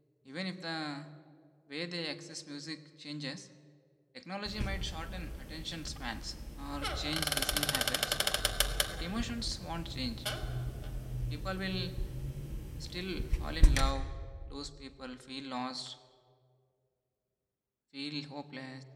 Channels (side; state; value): both; identical; correlation 1.00